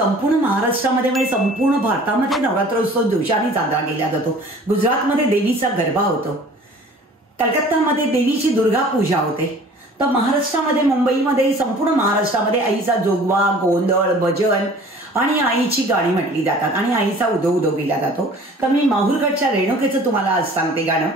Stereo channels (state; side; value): normal; both; correlation 0.48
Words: महाराष्ट्रामध्ये म्हणजे संपूर्ण भारतामध्ये नवरात्र उत्सव जोशाने साजरा केला जातो। गुजरातमध्ये देवीचा गरबा होतो, कलकत्तामध्ये देवीची दुर्गा पूजा होते, तर महाराष्ट्रामध्ये मुंबईमध्ये संपूर्ण महाराष्ट्रामध्ये आईचा जोगवा, गोंधळ, भजन आणि आईची गाणी म्हटली जातात आणि आईचा उदो उदो केला जातो। तर मी माहूरगडच्या रेणुकेचं तुम्हाला आज सांगते गाणं